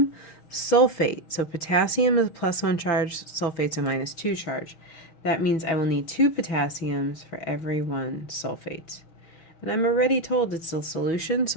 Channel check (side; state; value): right; late; 6.3 ms